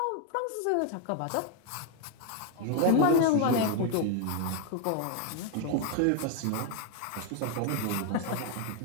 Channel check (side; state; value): both; different; correlation 0.01